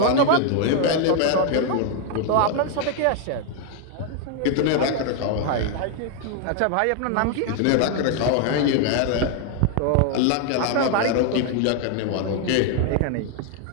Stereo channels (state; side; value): different; both; correlation 0.00